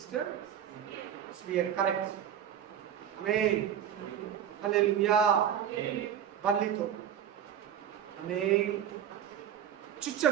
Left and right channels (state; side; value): quieter; left; 9.5 dB